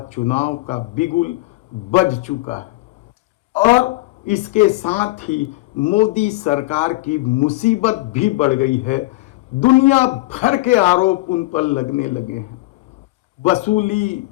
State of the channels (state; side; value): quieter; right; 20.3 dB